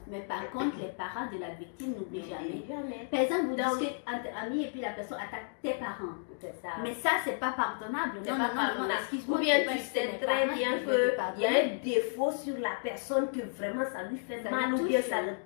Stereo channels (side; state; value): right; silent; digital silence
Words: mais par contre, les parents de la victime n'oublient jamais. Par exemple, vous discutez entre amis et puis la personne attaque tes parents. Ça. Mais ça, c'est pas pardonnable. Non, excuse-moi. Ou bien tu sais très bien qu'il y a un défaut sur la personne que vraiment ça lui fait mal ou bien ça le